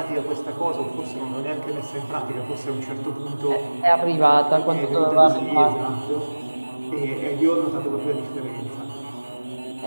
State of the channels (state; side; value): inverted; both; correlation -1.00